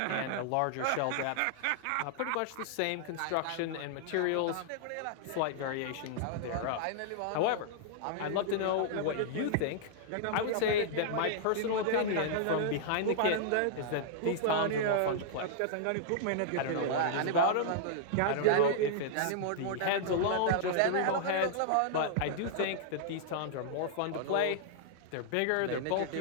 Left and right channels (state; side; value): different; both; correlation -0.01